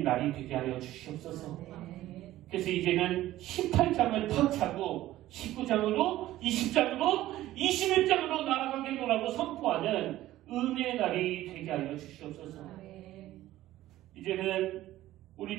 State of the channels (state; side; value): quieter; left; 15.0 dB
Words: 날이 되게 하여 주시옵소서. 그래서 이제는 18장을 탁 차고 19장으로 20장으로 21장으로 나아가겠노라고 선포하는 은혜의 날이 되게 하여 주시옵소서. 이제는 우리